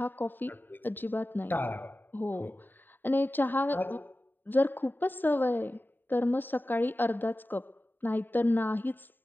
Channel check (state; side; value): late; right; 0.092 ms